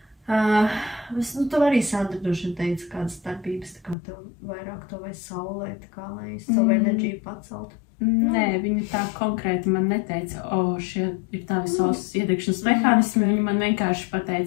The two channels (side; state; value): right; drops out; at 4.0 s